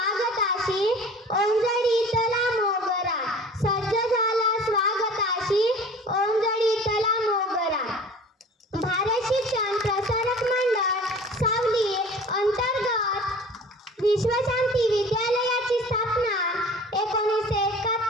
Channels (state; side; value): normal; both; correlation 0.43